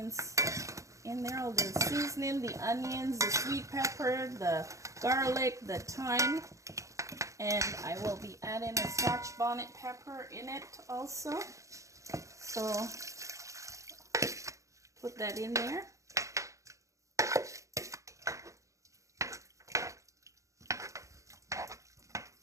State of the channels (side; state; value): left; late; 0.15 ms